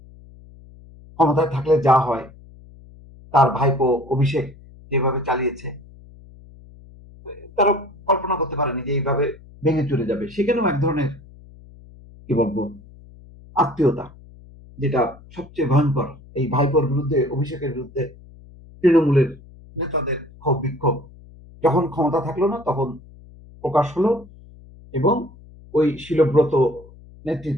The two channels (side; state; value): left; noise; hum, 22 dB below the sound